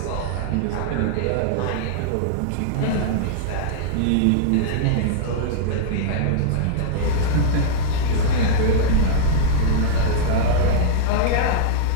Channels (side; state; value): both; different; correlation -0.02